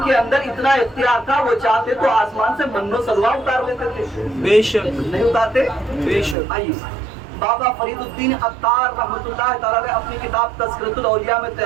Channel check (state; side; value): drops out; left; at 6.4 s